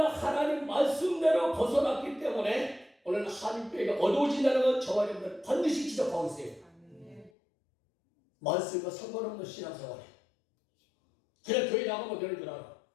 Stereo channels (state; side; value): drops out; right; at 7.3 s